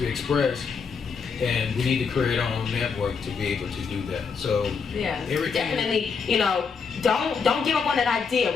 be expressed. And we need to create our own network to be able to do that. So yeah, definitely, don't give up on that idea.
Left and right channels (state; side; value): quieter; right; 5.6 dB